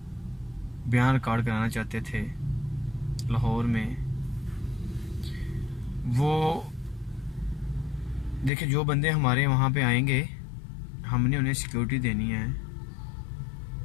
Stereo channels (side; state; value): right; drops out; at 8.5 s